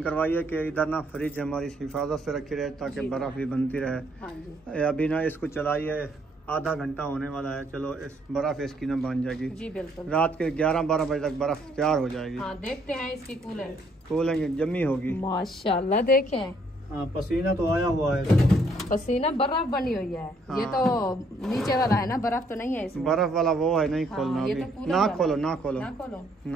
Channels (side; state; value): both; normal; correlation 0.68